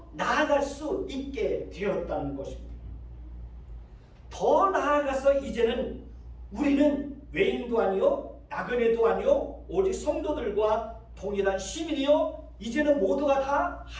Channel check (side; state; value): both; identical; correlation 1.00